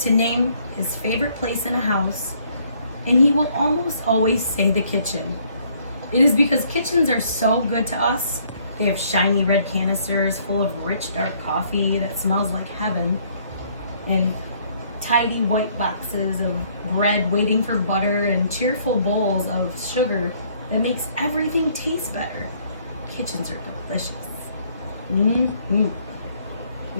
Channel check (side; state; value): both; inverted; correlation -0.64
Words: name his favorite place in a house, and he will almost always say the kitchen. It is because kitchens are so good to us. They have shiny red canisters full of rich dark coffee that smells like heaven, and tidy white boxes of bread waiting for butter, and cheerful bowls of sugar that makes everything taste better. Kitchens are delicious.